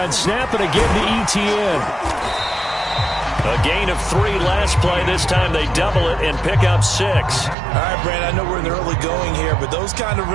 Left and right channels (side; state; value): left; drops out; at 7.6 s